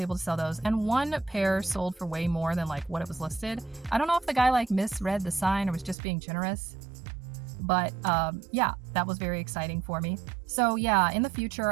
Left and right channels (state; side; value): drops out; left; at 6.0 s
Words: to sell those, and one pair sold for way more than like what it was listed. I don't know if the guy like misread the sign or was just being generous, but yeah, that was very exciting for me. So yeah, in the future,